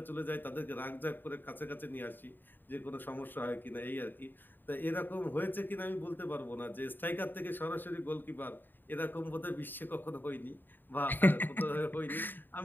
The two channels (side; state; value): right; late; 0.092 ms